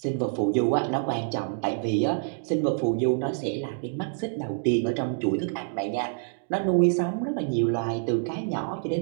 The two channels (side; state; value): left; silent; digital silence